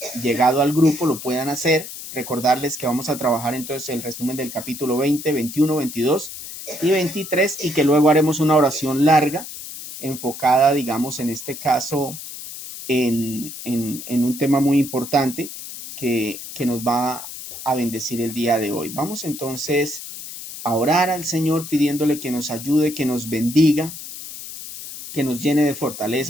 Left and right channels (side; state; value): left; noise; hiss, 11 dB below the sound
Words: llegado al grupo lo puedan hacer. Recordarles que vamos a trabajar entonces el resumen del capítulo 20, 21, 22 y 23, y que luego haremos una oración larga enfocada, digamos, en este caso, en un tema muy importante que nos va a bendecir el día de hoy. Vamos entonces a orar al Señor pidiéndole que nos ayude, que nos bendiga, que nos llene de